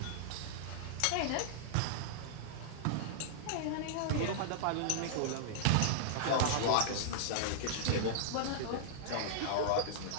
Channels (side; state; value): both; different; correlation -0.01